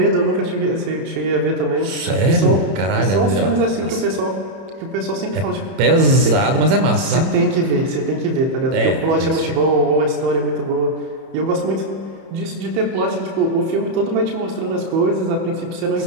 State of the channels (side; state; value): left; late; 31 ms